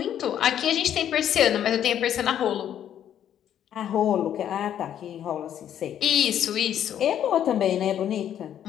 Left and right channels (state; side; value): quieter; right; 10.2 dB